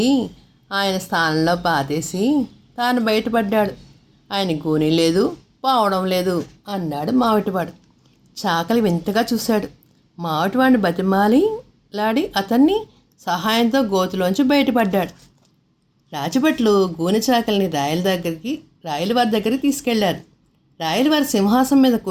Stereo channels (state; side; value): identical; both; correlation 1.00